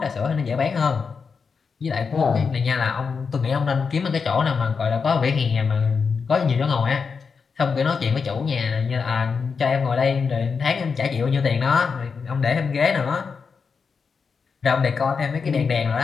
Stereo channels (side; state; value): right; quieter; 5.5 dB